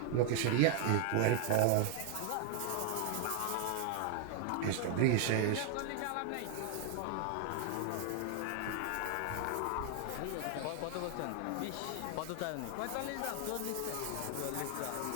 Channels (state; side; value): different; both; correlation 0.00